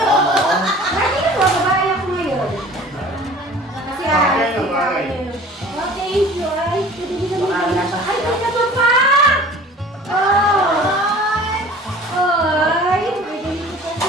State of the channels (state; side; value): normal; both; correlation 0.45